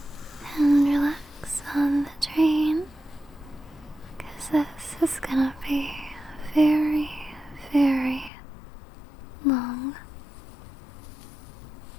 and relax on the train, 'cause this is gonna be a very, very long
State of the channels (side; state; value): right; drops out; at 8.3 s